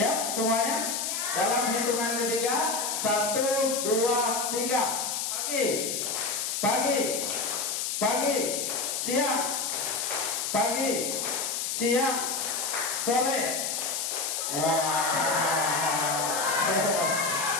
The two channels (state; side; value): noise; left; hiss, 1 dB below the sound